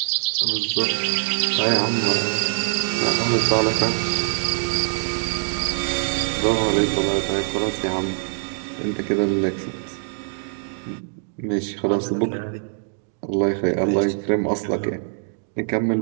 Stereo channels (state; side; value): silent; left; digital silence